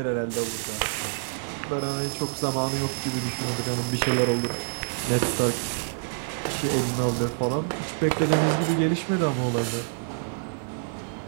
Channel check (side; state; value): left; silent; 60 dB below the other